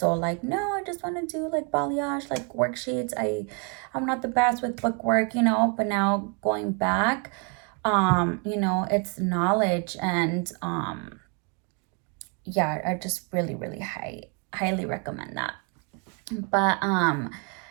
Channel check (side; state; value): left; quieter; 35.0 dB